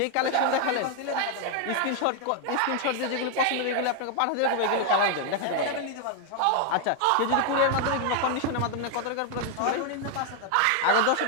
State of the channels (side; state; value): both; different; correlation 0.00